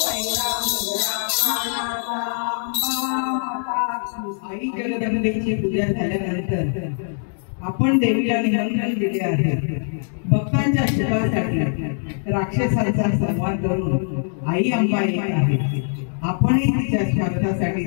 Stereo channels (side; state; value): right; silent; digital silence